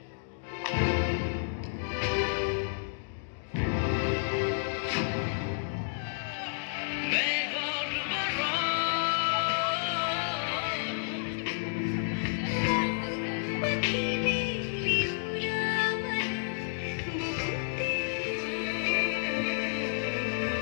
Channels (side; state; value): right; silent; digital silence